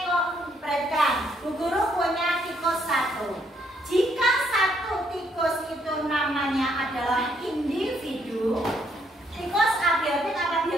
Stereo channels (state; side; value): normal; both; correlation 0.72